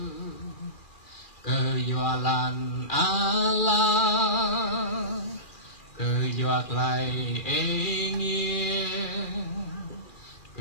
cờ dọa lan ala cờ dọa lại ê nghe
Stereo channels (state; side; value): late; right; 2.4 ms